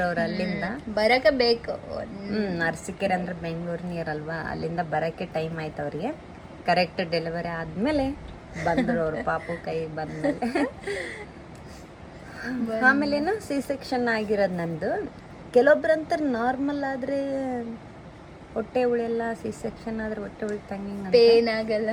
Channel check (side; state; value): both; identical; correlation 1.00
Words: ಅವ್ರು. ಅಲ್ಲಿಂದ ಬರಕ ಬೇಕು. ಅರಸೀಕೆರೆ ಅಂದ್ರೆ ಬೆಂಗಳೂರು ನೀರ್ ಅಲ್ವಾ, ಅಲ್ಲಿಂದ ಬರಕ್ಕೆ ಟೈಮ್ ಆಯ್ತು ಅವ್ರಿಗೆ. ಕರೆಕ್ಟ್ ಡೆಲಿವರಿ ಆದ್ಮೇಲೆ ಬಂದ್ರು ಅವ್ರು ಪಾಪು ಕೈ ಬಂದ್ಮೇಲೆ. ಆಮೇಲೇನು C-section ಆಗಿರೋದು ನಂದು. ಕೆಲವೊಬ್ರಂತ ನಾರ್ಮಲ್ ಆದ್ರೆ ಹೊಟ್ಟೆ ಉಳಿಯಲ್ಲ, C-section ಆದ್ರೆ ಹೊಟ್ಟೆ ಉಳಿತಂಗ ಪೇನ್ ಆಗಲ್ಲ.